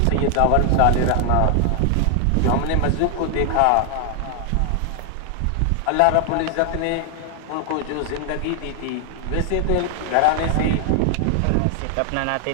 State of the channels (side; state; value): both; different; correlation 0.00